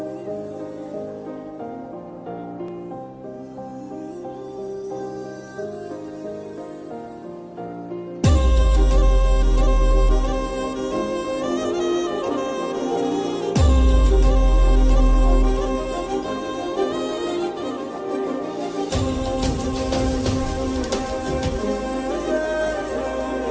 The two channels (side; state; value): both; identical; correlation 1.00